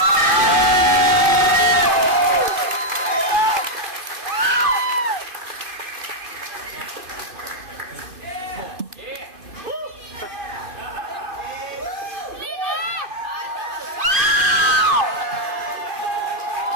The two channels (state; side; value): late; left; 2.5 ms